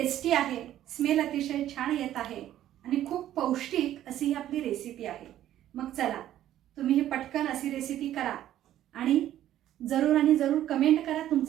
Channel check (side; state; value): left; quieter; 12.4 dB